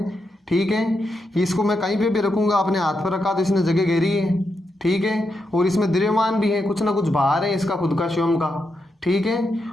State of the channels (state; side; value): normal; both; correlation 0.84